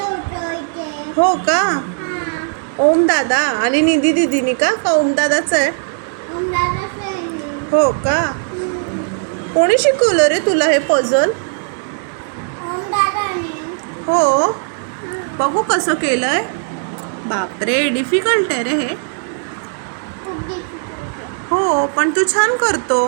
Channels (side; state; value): left; silent; 68 dB below the other